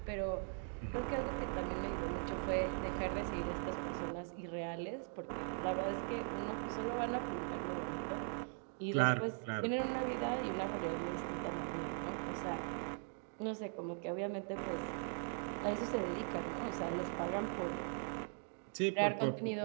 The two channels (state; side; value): silent; left; 51 dB below the other